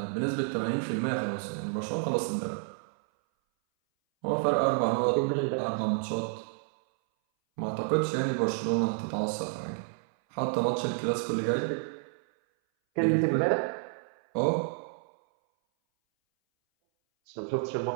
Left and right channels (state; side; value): silent; left; 58 dB below the other